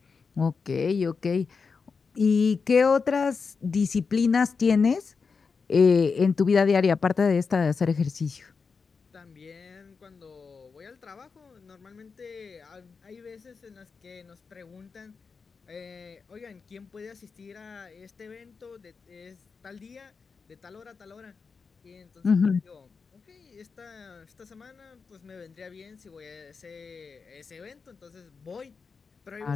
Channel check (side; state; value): right; quieter; 5.1 dB